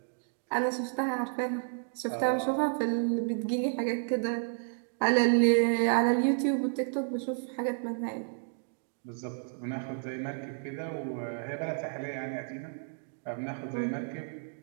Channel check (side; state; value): left; silent; 57 dB below the other